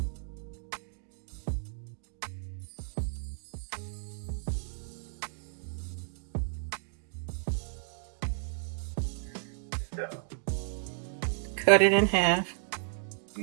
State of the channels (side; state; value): left; silent; digital silence